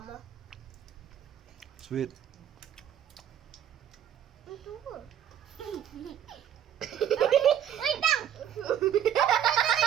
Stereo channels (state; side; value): quieter; left; 10.0 dB